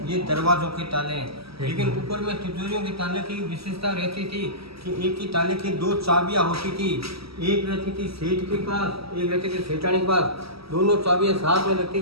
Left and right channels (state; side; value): late; left; 0.76 ms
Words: ये दरवाजों के ताले हैं। लेकिन ऊपर में तिजोरियों के ताले की विशेषता रहती थी कि एक ही ताले की 2 चाबियां होती थी। एक रहती थी सेठ के पास, एक रहती थी सेठानी के पास। दोनों चाबियां साथ में लगती